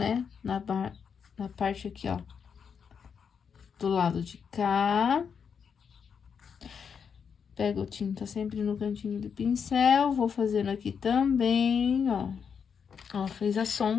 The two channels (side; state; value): right; quieter; 6.7 dB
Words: Na parte aqui, ó, do lado de cá. Pego tinta sempre no cantinho do pincel, vou fazendo aqui também, ó. Ó, fez a